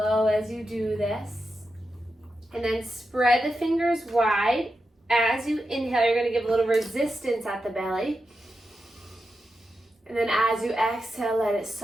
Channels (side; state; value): both; normal; correlation 0.89